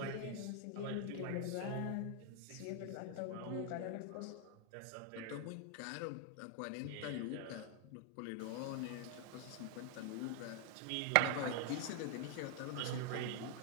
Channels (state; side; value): different; both; correlation 0.00